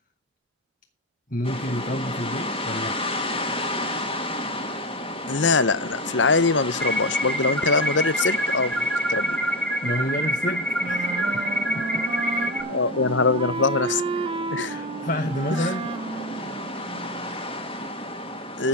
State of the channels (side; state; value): both; normal; correlation 0.13